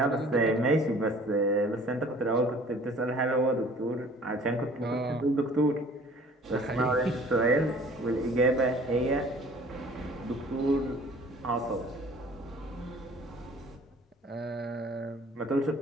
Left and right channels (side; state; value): both; normal; correlation 0.51